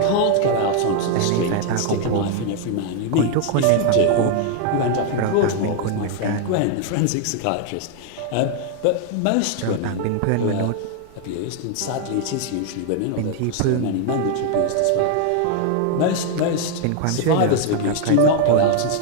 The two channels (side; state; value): both; different; correlation 0.00